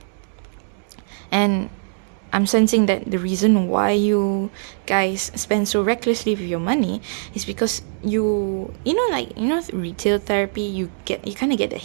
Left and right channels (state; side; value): silent; left; digital silence